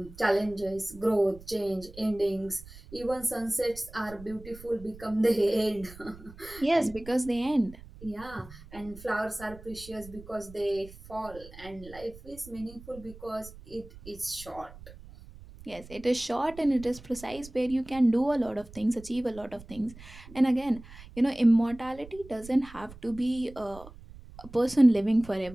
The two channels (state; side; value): noise; right; rumble, 18 dB below the sound